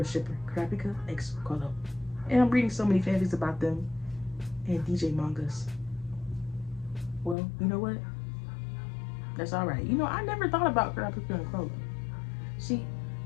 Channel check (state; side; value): drops out; right; at 7.4 s